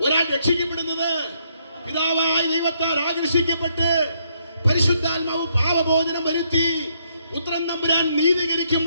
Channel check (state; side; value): inverted; both; correlation -0.73